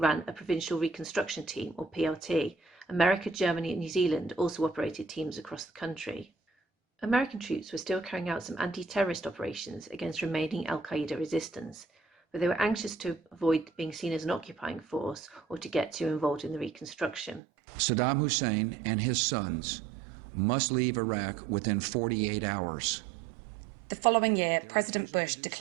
a Provincial Reconstruction Team, or PRT. America, Germany and New Zealand also operated teams across the country. American troops were still carrying out some anti-terrorist operations against remaining Al-Qaeda resistance, but they were anxious to avoid being seen as an occupying force or to get too involved in the reconstruction. Saddam Hussein and his sons must leave Iraq within 48 hours. The following year, President Bush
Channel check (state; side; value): drops out; left; at 17.4 s